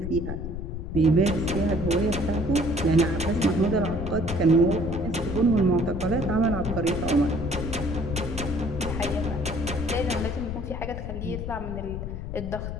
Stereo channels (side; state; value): left; noise; rumble, 6 dB below the sound